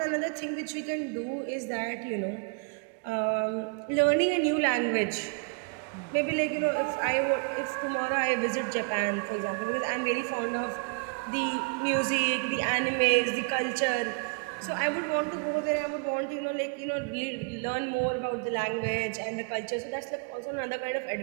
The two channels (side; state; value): left; quieter; 35.9 dB